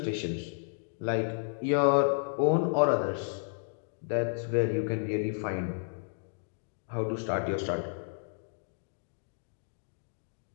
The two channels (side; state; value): right; silent; digital silence